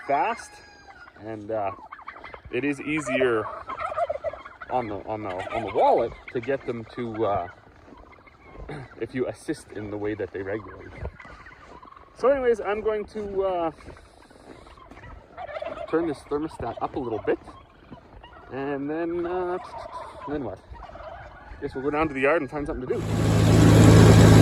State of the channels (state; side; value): identical; both; correlation 1.00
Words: fast, and it is easier on the wallet to get them to if you assist in the way that they regulate. So anyways, I'm going to turn this thermostat up a little bit, and then what? I guess we'll go down to the yard and find something to do.